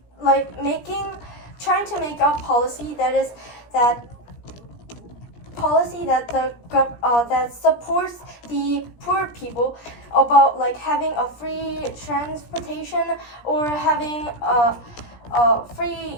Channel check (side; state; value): right; late; 17 ms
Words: like trying to make a policy that supports the poor people, about like having a free transportation or having free